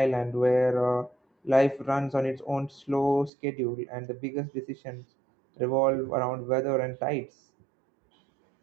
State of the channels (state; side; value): drops out; left; at 3.3 s